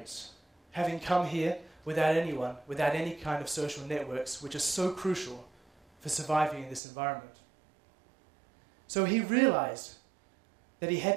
having come here without anyone, without any kind of social networks, which is so crucial for surviving in this environment. So he realized that he had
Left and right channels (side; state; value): left; drops out; at 6.8 s